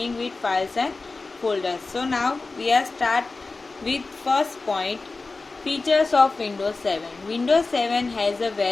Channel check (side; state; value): right; quieter; 3.7 dB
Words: with files and folders. So now we are start with first point, features of Windows 7. Windows 7 has a